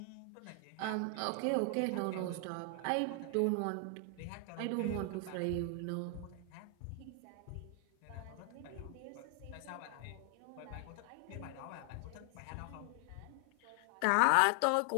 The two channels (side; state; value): both; different; correlation 0.00